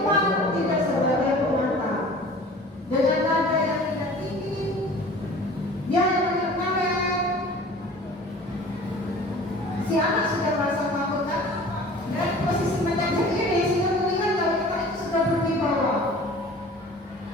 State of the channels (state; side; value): normal; both; correlation 0.44